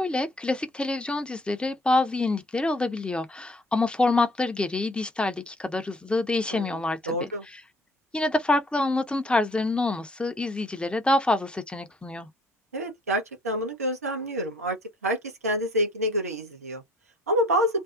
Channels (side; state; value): both; normal; correlation 0.57